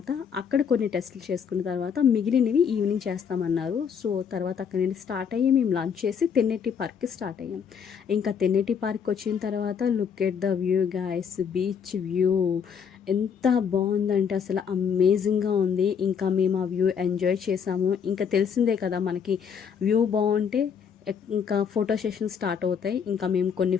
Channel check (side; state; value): right; quieter; 7.1 dB